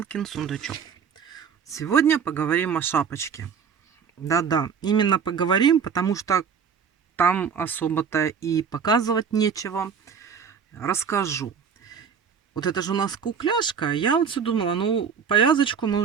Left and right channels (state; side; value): quieter; left; 6.8 dB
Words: Сундучок. Сегодня поговорим о шапочке. Да-да, именно поговорим, потому что там особо-то и показывать нечего. Расскажу. Вот это же у нас кукляшка. Я вот все думала, ну, повязочку мы